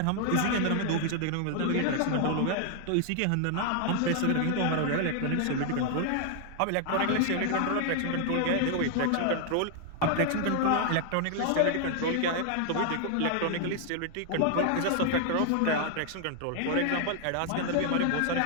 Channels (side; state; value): both; different; correlation 0.00